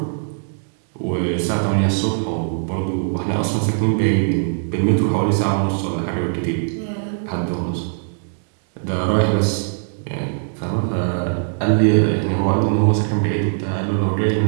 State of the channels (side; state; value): left; silent; digital silence